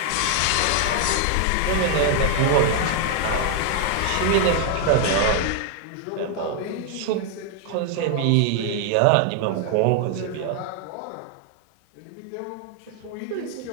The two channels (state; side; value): different; both; correlation 0.00